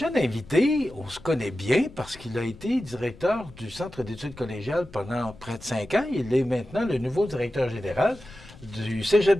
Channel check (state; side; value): noise; left; rumble, 20 dB below the sound